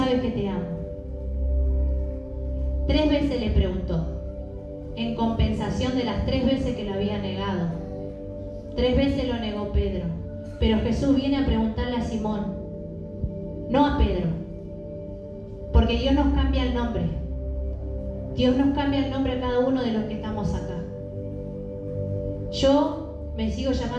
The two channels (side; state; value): both; identical; correlation 1.00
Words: que te amo. 3 veces le preguntó, en compensación de las 3 veces que lo había negado. 3 veces lo negó Pedro, pero Jesús viene a preguntarle a Simón, no a Pedro, porque Dios nos cambia el nombre. Dios nos cambia el nombre a cada uno de los que estamos acá. Yo me sigo